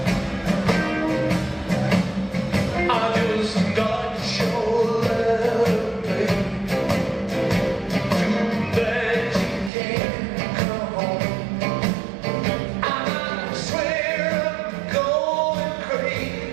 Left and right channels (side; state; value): left; drops out; at 9.7 s